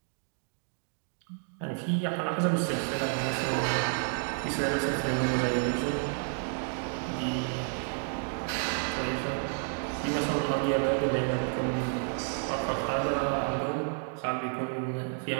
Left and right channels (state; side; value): silent; left; 56 dB below the other